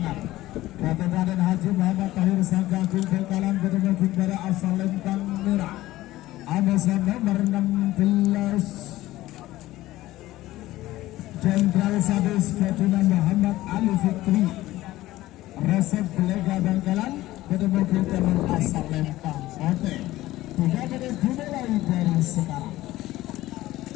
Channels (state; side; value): quieter; right; 16.4 dB